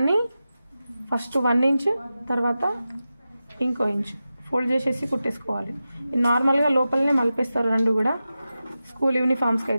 ఫస్ట్ 1 ఇంచ్ తర్వాత ఇంకో ఇంచ్ ఫోల్డ్ చేసేసి కుట్టేసుకోవాలి. నార్మల్గా లోపలనే మలిపేస్తారు రెండు కూడా స్కూల్ యూనిఫామ్స్కి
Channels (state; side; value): inverted; both; correlation -0.93